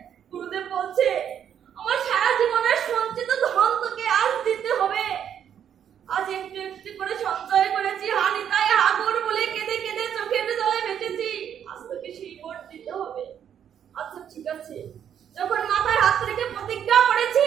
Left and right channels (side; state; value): left; quieter; 9.0 dB